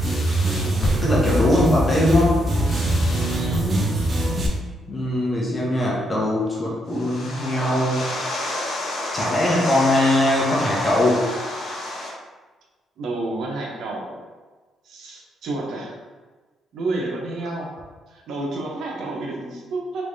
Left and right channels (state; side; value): normal; both; correlation 0.78